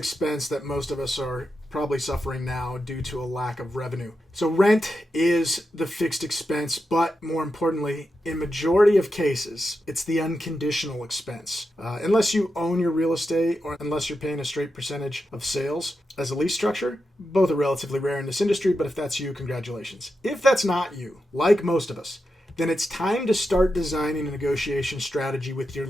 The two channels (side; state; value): both; normal; correlation 0.88